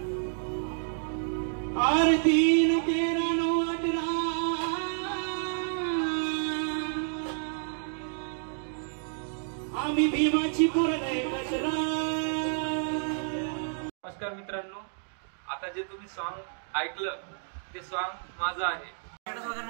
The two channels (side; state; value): left; silent; digital silence